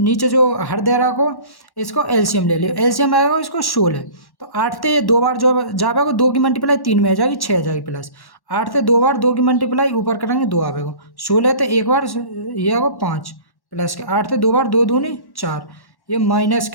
जो हर दे रहा को इसको एलसीएम ले लियो, एलसीएम आएगा इसको 16, तो 8 से 2 बार जो जाएगा 2 की मल्टीप्लाई 3 में आ जाएगी 6 आ जाएगी, प्लस 8 से 2 बार 2 की मल्टीप्लाई ऊपर करेंगे 2 आएगा, 16 तो एक बार ये आएगा 5, प्लस के 8 से 2 बार 2 दूनी 4, ये माइनस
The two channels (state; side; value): late; right; 1.1 ms